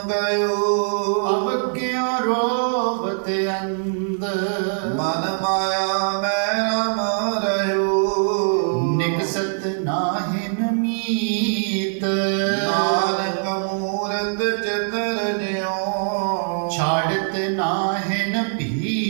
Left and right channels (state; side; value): silent; left; digital silence